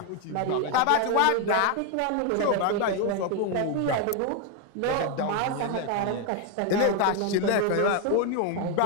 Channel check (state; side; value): different; both; correlation 0.01